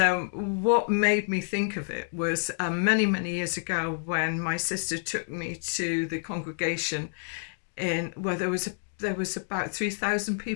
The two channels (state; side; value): silent; right; digital silence